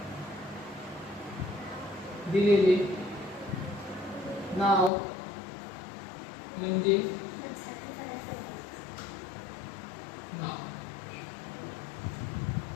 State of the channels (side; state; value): right; drops out; at 4.9 s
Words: दिलेले नाव म्हणजे नाव.